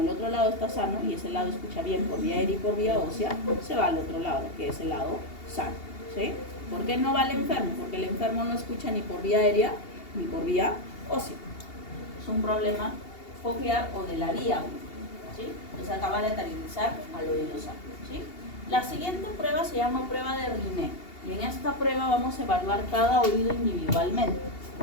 el otro lado está sano y ese lado escucha bien por vía aérea y por vía ósea, se va al otro lado, que es el lado sano, ¿sí? ¿Por qué no va el enfermo? Porque el enfermo no escucha ni por vía aérea ni por vía ósea. Es un problema coclear o de la vía, ¿sí? Entonces acaba de lateralizar al oído sano, ¿sí? La siguiente prueba se llama prueba de Riné. Y en esta prueba vamos a evaluar cada oído individualmente,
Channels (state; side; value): late; right; 2.8 ms